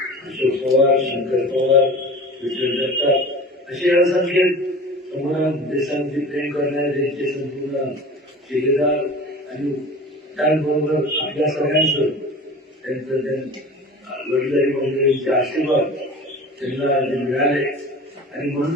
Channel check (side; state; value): both; normal; correlation 0.38